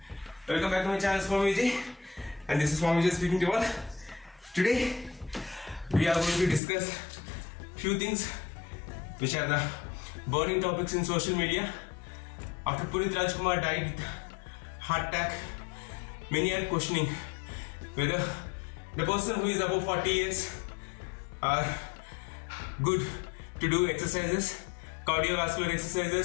welcome back to my channel Swami Vijay, and this is Swami Vijay speaking to you all. Today we are going to discuss few things which are the burning topics in social media. After Punit Rajkumar died with heart attack, many are questioning whether the person who is above 40 years are good to do exercises, cardiovascular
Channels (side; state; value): right; drops out; at 6.6 s